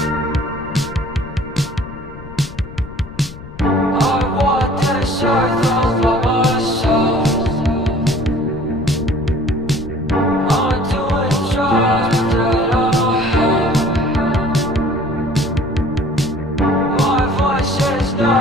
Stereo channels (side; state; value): left; noise; rumble, 15 dB below the sound